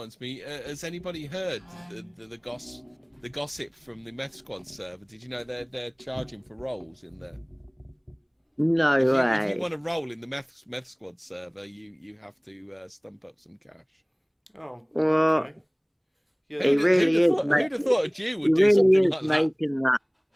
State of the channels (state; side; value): identical; both; correlation 1.00